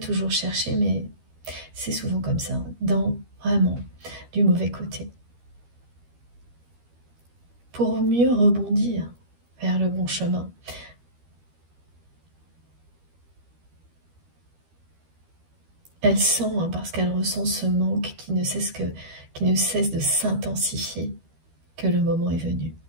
cherché, mais c'est souvent comme ça, dans vraiment du mauvais côté. Pour mieux rebondir vers le bon chemin. Elle sent, hein, parce qu'elle ressent ce manque qui ne cesse de s'intensifier, que le moment est venu.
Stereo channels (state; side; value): late; left; 12 ms